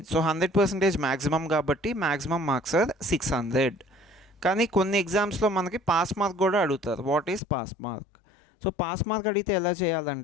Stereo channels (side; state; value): right; drops out; at 7.4 s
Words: సో 100% మ్యాక్సిమం కాబట్టి మ్యాక్సిమం మార్క్స్ ఆర్ 600. కానీ కొన్ని ఎగ్జామ్స్లో మనకి పాస్ మార్క్ కూడా అడుగుతారు. What is pass mark? So pass mark అడిగితే ఎలా